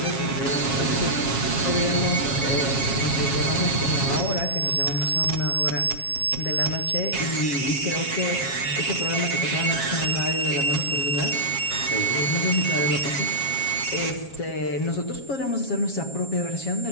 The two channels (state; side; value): late; right; 7.3 ms